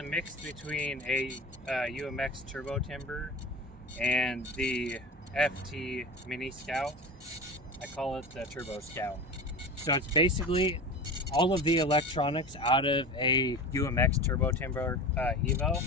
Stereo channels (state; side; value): normal; both; correlation 0.31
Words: mix between a UMX Turbo Timber and the FT Mini Scout. I call it the Turbo Scout. So it's basically all of the electronics out of a UMX Turbo Timber Evo